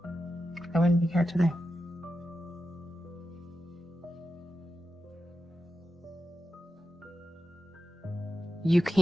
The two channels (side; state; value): both; normal; correlation 0.91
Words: I wouldn't be here today. You